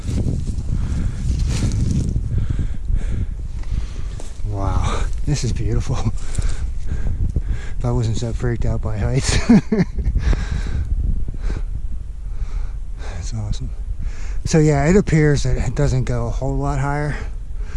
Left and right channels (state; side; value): identical; both; correlation 1.00